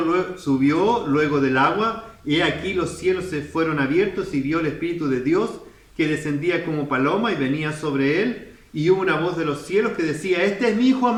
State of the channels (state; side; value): identical; both; correlation 1.00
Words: luego del agua, y aquí los cielos se fueron abiertos y vio el Espíritu de Dios que descendía como paloma y venía sobre él, y hubo una voz de los cielos que decía: este es mi Hijo